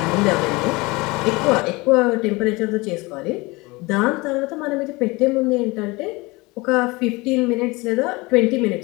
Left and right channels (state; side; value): quieter; right; 23.9 dB